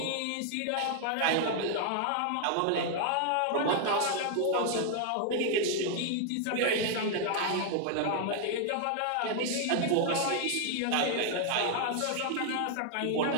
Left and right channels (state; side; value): different; both; correlation 0.00